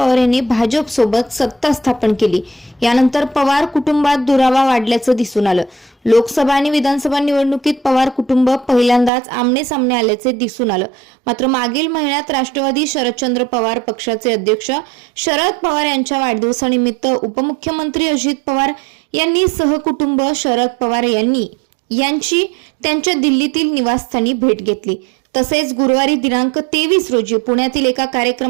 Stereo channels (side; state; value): left; drops out; at 9.1 s